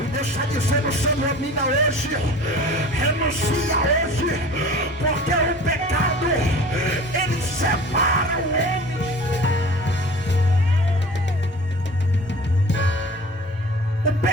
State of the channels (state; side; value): normal; both; correlation 0.41